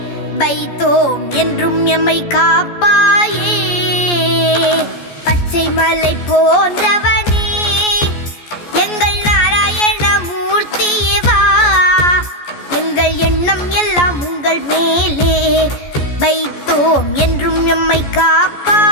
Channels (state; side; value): late; right; 14 ms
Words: வைத்தோம் என்றும் எம்மை காப்பாயே. பச்சை மலை போன்றவனே எங்கள் நாராயண மூர்த்தியே வா. எங்கள் எண்ணம் எல்லாம் உங்கள் மேலே வைத்தோம் என்றும் எம்மை